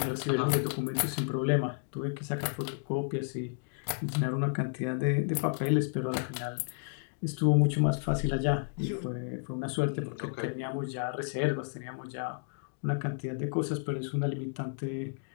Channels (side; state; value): right; silent; digital silence